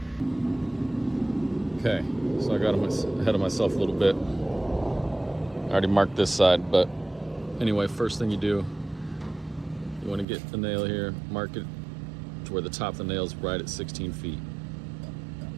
Okay, so I got ahead of myself a little bit. I already marked this side, but anyway, first thing you do, you want to get the nail here, mark it to where the top of the nail is right at 16 feet.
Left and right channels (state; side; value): drops out; left; at 10.2 s